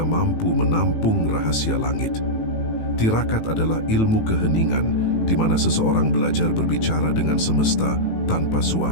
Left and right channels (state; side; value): late; right; 18 ms